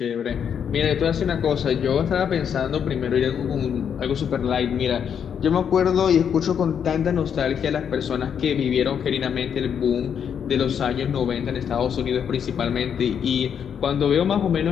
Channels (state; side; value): quieter; right; 7.9 dB